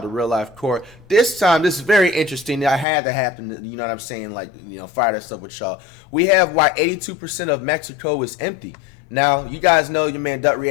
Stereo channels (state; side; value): drops out; right; at 2.9 s